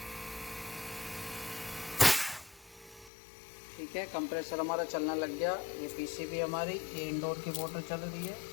ठीक है, कंप्रेसर हमारा चलना लग गया। ये पीसीबी हमारी, ये इंडोर की मोटर चल रही है।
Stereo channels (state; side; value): drops out; right; at 3.1 s